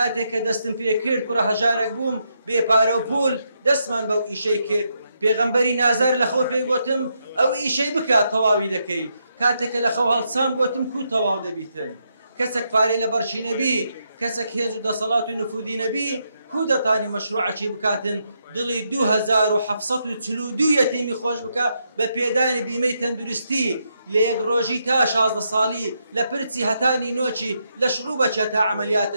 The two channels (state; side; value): inverted; both; correlation -0.80